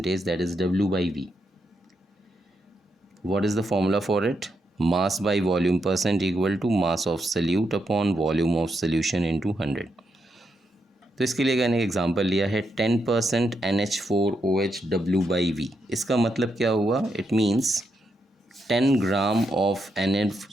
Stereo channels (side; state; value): both; normal; correlation 0.82